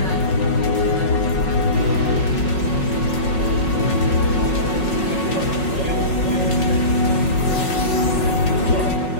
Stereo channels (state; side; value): late; right; 5.4 ms